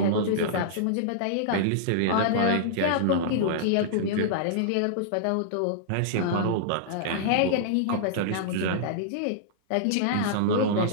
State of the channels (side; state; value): both; different; correlation -0.02